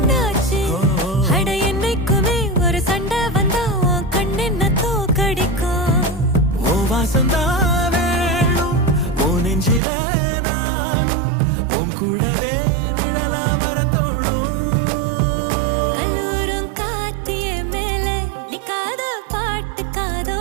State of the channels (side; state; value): left; drops out; at 9.8 s